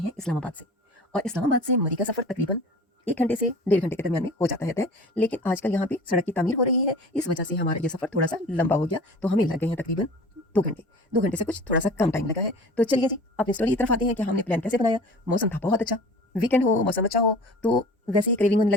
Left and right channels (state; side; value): normal; both; correlation 0.41